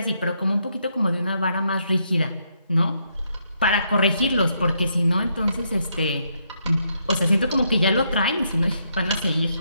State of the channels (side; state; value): both; inverted; correlation -0.76